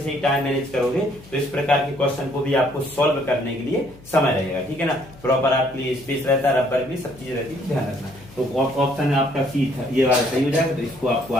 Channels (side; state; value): left; noise; hum, 22 dB below the sound